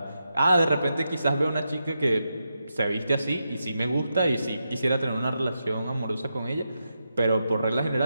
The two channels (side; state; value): both; inverted; correlation -0.86